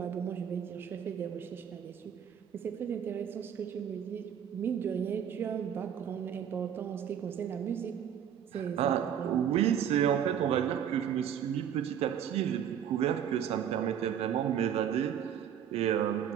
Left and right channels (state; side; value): quieter; left; 9.0 dB